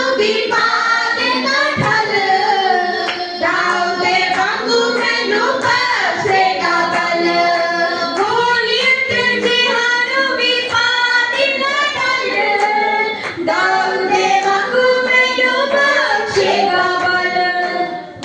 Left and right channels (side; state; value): both; identical; correlation 1.00